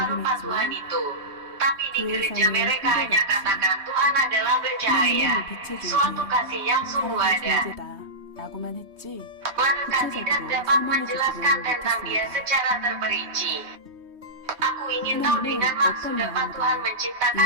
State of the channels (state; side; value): late; left; 3.2 ms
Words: rupa Tuhan itu. Tapi di gereja mereka hanya katakan Tuhan adalah bercahaya, suatu kasih yang sungguh ada. Mereka tidak dapat menjelaskan tentang dia secara terperinci. Aku ingin tahu dengan maksud apa Tuhan